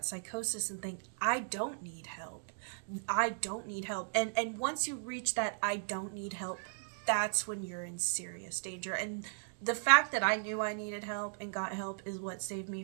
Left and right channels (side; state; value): left; silent; digital silence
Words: psychosis and think, I don't need help. I don't need help. And once you reach that I don't need help, that's when you're in serious danger. And the fact that I knew I needed help and got help is what saved me